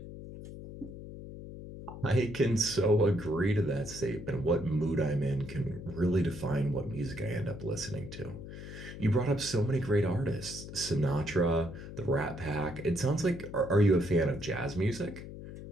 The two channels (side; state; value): left; noise; hum, 12 dB below the sound